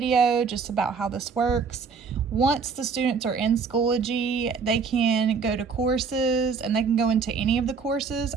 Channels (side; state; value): left; quieter; 5.4 dB